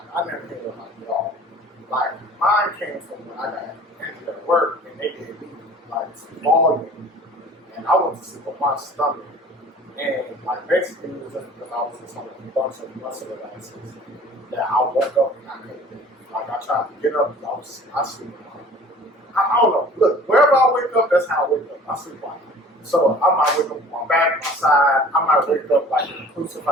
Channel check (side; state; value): both; normal; correlation 0.47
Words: I never heard of like y'all. Like mine came from when I got injured at work and they did me like volume, and I went to sleep on my stomach, and like basically it was just because I was just on a bunch of muscle relaxers that I woke up and I couldn't move. Like I tried to get up, I sleep on. I don't know. Look, wherever I wake up, that's how I wake up. I sleep on. So I might wake up on my back, my side. I might wake up like in a